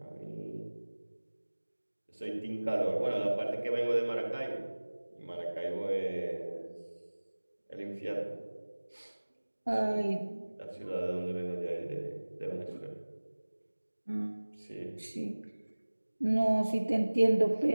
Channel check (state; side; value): inverted; both; correlation -1.00